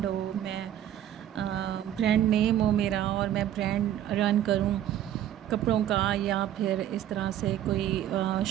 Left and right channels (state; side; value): quieter; left; 11.4 dB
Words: हो, मैं ब्रांड नेम हो मेरा, और मैं ब्रांड रन करूँ कपड़ों का, या फिर इस तरह से कोई